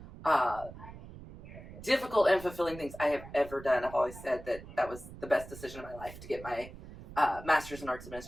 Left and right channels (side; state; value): right; noise; rumble, 15 dB below the sound